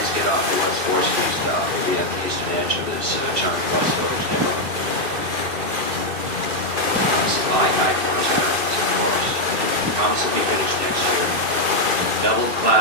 get off the West 4th Street stop, we'll be at the eastern edge of this charming West Village neighborhood. Supplying high corners of course. Constantly finished next year. Double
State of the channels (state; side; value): late; left; 2.5 ms